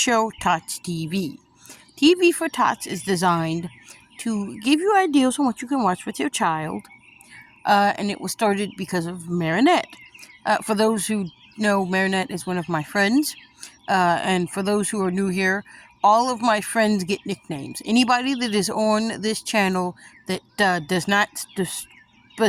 Tots TV. TV for Tots is designed to give you ideas on what you can watch with your child, and it was started because of Marinette. For those who know, Marinette is one of my friends, and for those who are new here, all of my friends get nicknames. Anybody that is on this channel that does not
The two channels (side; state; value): both; identical; correlation 1.00